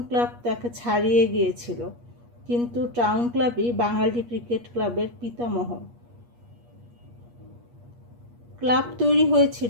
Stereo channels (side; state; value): left; late; 8.4 ms